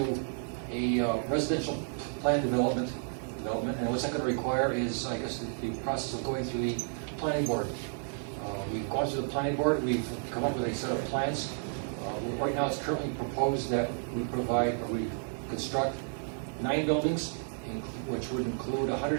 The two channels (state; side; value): silent; left; 57 dB below the other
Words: a residential plan development, and what's that going to require is, I guess, the process of going through the planning board. We've gone through the planning board, we've come up with a set of plans. Right now, it's currently proposed that we construct 9 buildings, which would include